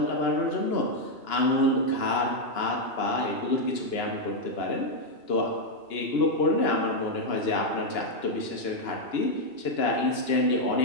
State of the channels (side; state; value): right; late; 2.9 ms